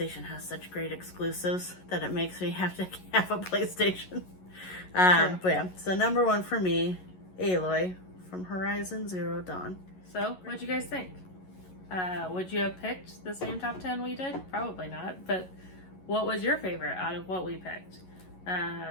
has such great exclusives that it makes me have to have a PlayStation. But yeah, so number one for me, Aloy from Horizon Zero Dawn. So, what'd you guys think? Would you have picked the same top 10 we did? Probably not, but what was your favorite out of what we picked?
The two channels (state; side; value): late; right; 11 ms